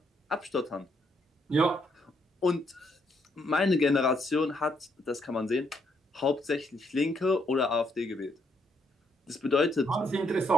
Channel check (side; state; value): both; normal; correlation 0.74